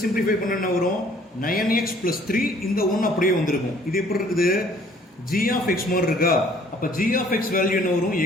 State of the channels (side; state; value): both; normal; correlation 0.58